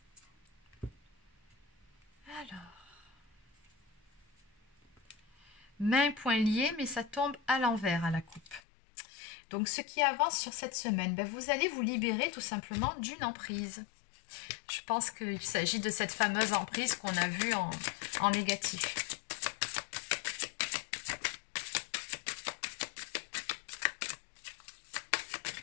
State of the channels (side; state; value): right; drops out; at 8.6 s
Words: Alors, main, poing liés, mais ça tombe à l'envers à la coupe. Donc, ce qui avance sur cette semaine, ben, vous allez vous libérer tout simplement d'une emprise. Je pense qu'il s'agit de cette fameuse emprise qu'on a vue en négatif.